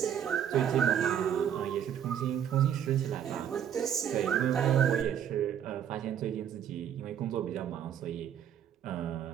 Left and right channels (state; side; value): quieter; left; 9.3 dB